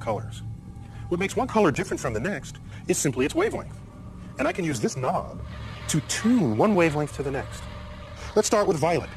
colors. What makes one color different from the next is simply its wavelength. And I can use this knob to tune one wavelength to the next. Let's start with violet.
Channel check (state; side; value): identical; both; correlation 1.00